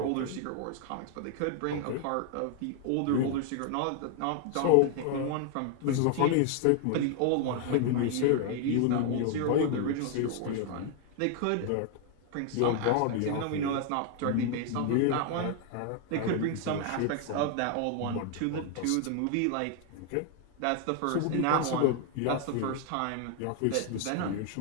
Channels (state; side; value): different; both; correlation 0.00